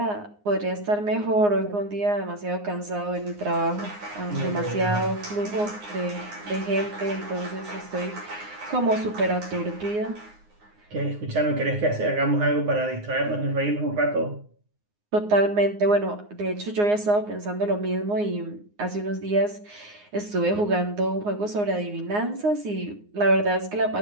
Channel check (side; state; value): left; late; 9.7 ms